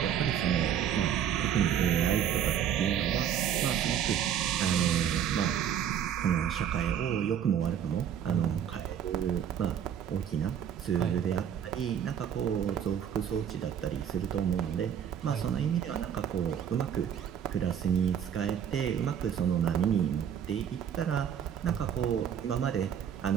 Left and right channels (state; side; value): quieter; left; 9.0 dB